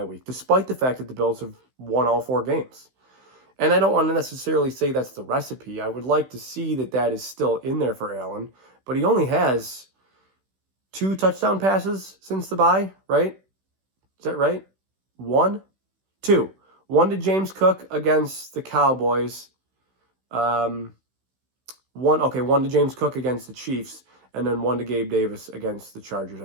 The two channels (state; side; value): late; left; 16 ms